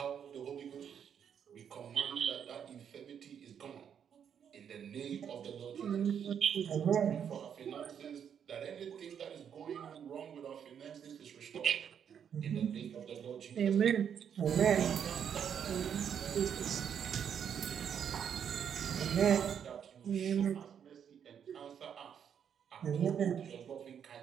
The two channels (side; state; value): left; quieter; 8.2 dB